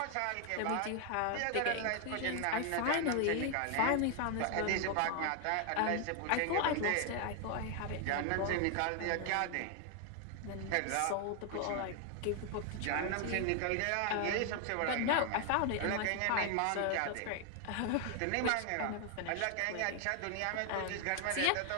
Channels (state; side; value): different; both; correlation 0.00